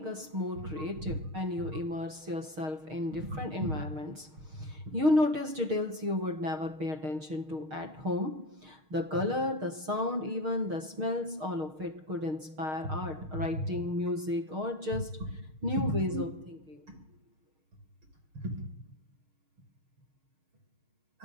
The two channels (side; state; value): left; late; 6.4 ms